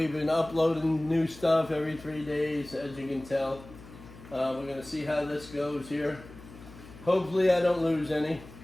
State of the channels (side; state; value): left; noise; hum, 18 dB below the sound